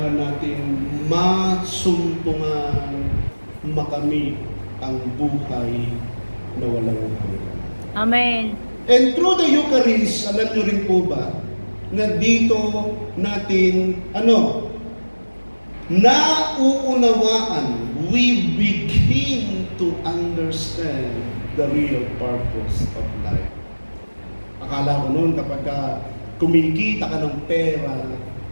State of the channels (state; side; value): inverted; both; correlation -1.00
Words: natin masumpungan, makamit ang buhay na walang hanggan. Amen. And through the Eucharist, alam nyo rin po ba, na dito natin, nauunawaan, we begin to understand the real purpose of life. Akala ko noon kapag kumikita ka ng pera,